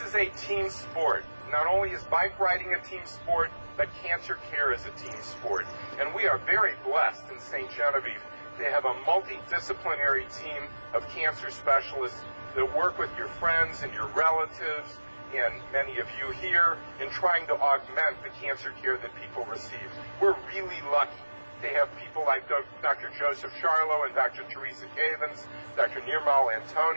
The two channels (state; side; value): inverted; both; correlation -1.00